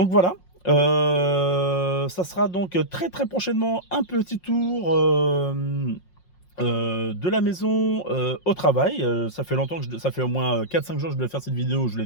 voilà. Ça sera donc très très prochainement un petit tour de la maison au travail. Ça fait longtemps que ça fait au moins 4-5 jours que je devais faire cette vidéo, je ne l'ai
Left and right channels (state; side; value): late; right; 5.6 ms